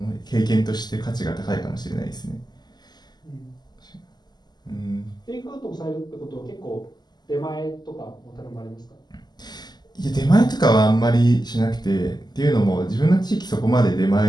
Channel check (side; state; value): right; late; 0.20 ms